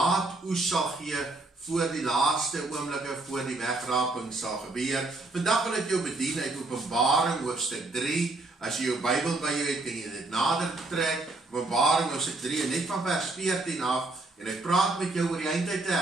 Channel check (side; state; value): left; quieter; 3.1 dB